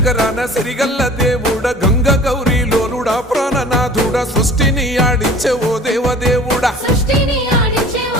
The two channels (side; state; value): both; normal; correlation 0.45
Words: సిరిగల్ల దేవుడ గంగ గౌరీ లోలుడా ప్రాణనాథుడా సృష్టిని ఆడించే ఓ దేవదేవుడా సృష్టిని ఆడించే